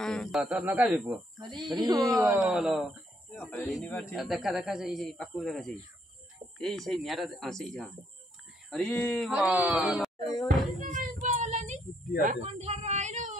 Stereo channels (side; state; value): both; normal; correlation 0.72